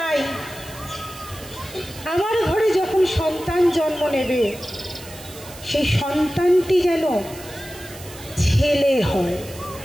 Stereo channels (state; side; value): noise; right; hiss, 17 dB below the sound